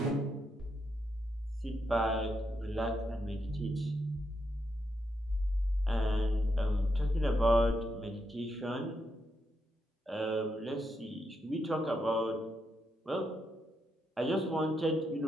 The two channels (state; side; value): normal; both; correlation 0.82